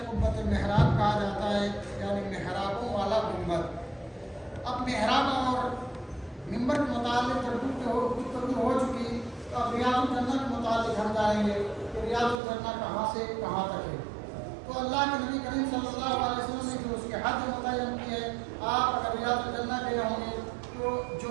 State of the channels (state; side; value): drops out; left; at 12.4 s